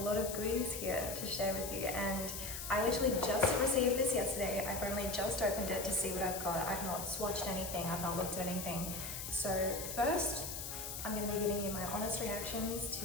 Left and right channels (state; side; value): noise; left; hiss, 6 dB below the sound